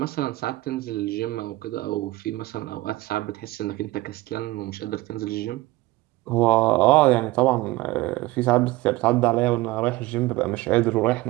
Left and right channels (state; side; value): quieter; left; 19.6 dB